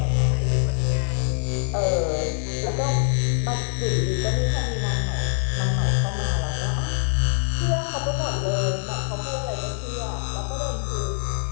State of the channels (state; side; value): silent; right; digital silence